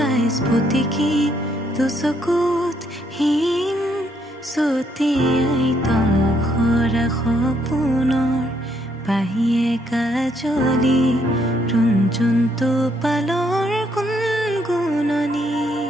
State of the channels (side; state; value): both; normal; correlation 0.72